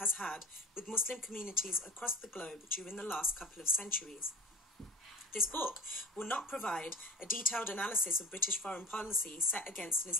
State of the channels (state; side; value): normal; both; correlation 0.36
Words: had with Muslim communities across the globe during the last couple of centuries. This book will not provide a detailed analysis of British foreign policy set against an